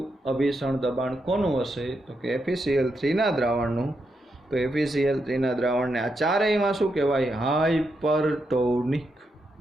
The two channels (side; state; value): both; normal; correlation 0.83